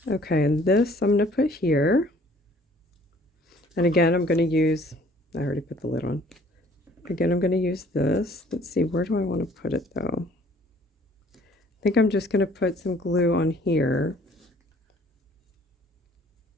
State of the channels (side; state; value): both; normal; correlation 0.56